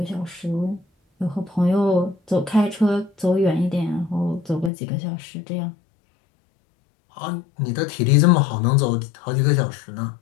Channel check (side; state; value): right; drops out; at 4.7 s